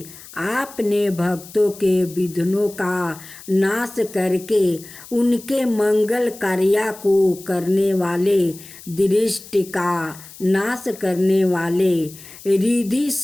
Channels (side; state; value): left; noise; hiss, 18 dB below the sound